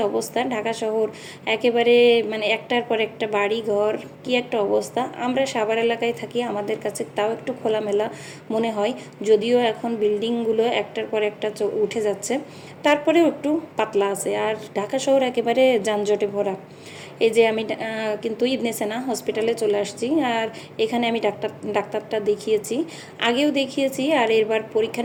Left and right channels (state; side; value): identical; both; correlation 1.00